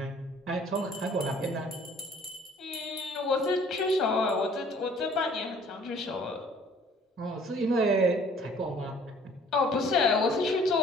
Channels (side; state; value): both; normal; correlation 0.55